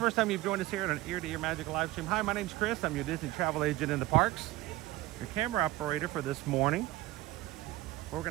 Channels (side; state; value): left; quieter; 17.7 dB